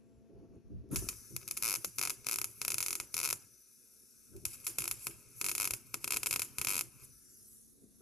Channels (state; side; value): normal; both; correlation 0.59